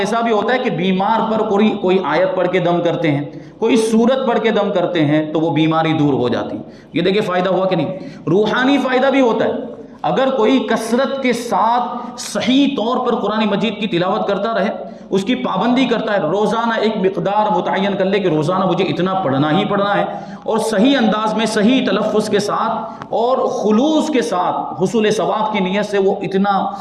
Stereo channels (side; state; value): both; identical; correlation 1.00